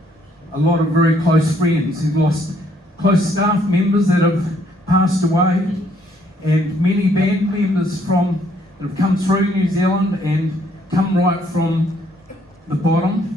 a lot of very close friends. He's lost close staff members that have passed away, and many band members that have come through New Zealand and come right from the bottom,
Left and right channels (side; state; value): both; normal; correlation 0.67